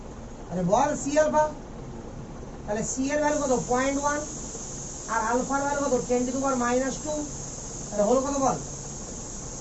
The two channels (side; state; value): both; identical; correlation 1.00